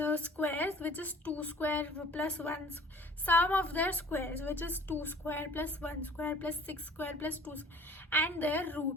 squares, which is 2 square plus 1, sum of their squares, which is 2 square plus 1 square plus 6 square plus 2 square, and their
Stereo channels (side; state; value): both; normal; correlation 0.49